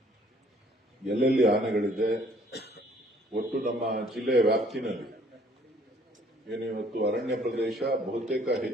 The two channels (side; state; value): both; normal; correlation 0.59